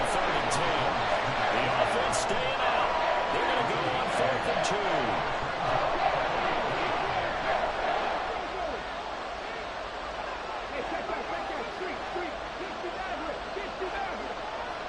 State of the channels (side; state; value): both; identical; correlation 1.00